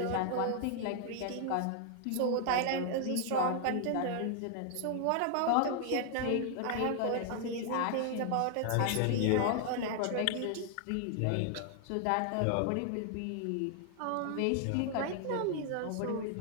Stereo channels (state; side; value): different; both; correlation 0.00